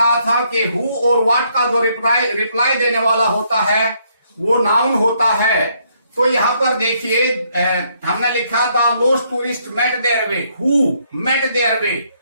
था कि हु और व्हाट का जो रिप्लाई देने वाला होता है वो नाउन होता है। तो यहां पर देखिए हमने लिखा the lost tourist met their way, who met their way,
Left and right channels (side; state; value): both; inverted; correlation -0.71